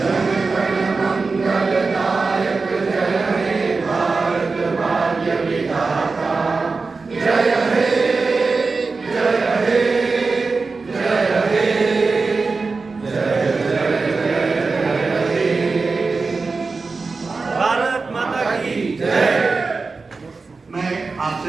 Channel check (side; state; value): left; quieter; 4.2 dB